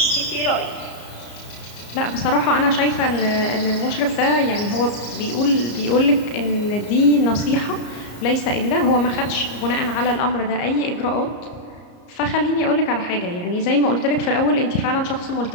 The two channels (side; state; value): right; late; 34 ms